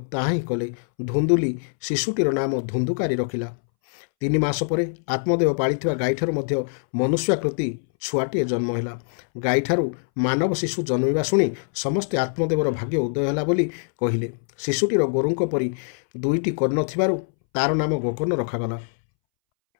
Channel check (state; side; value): silent; right; 63 dB below the other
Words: ତାହା ହିଁ କଲେ। ଧୁନ୍ଦୁଲି ଶିଶୁଟିର ନାମ ଧୁନ୍ଦୁକାରୀ ରଖିଲା। 3 ମାସ ପରେ ଆତ୍ମଦେବ ପାଳିଥିବା ଗାଈଠାରୁ ମଧ୍ୟ ମନୁଷ୍ୟାକୃତି ଛୁଆଟିଏ ଜନ୍ମ ହେଲା। ଗାଈଠାରୁ ମାନବ ଶିଶୁ ଜନ୍ମିବା ଶୁଣି ସମସ୍ତେ ଆତ୍ମଦେବର ଭାଗ୍ୟ ଉଦୟ ହେଲା ବୋଲି କହିଲେ। ଶିଶୁଟିର ଗୋରୁଙ୍କ ପରି 2ଟି କର୍ଣ୍ଣ ଥିବାରୁ ତାର ନାମ ଗୋକର୍ଣ୍ଣ ରଖାଗଲା।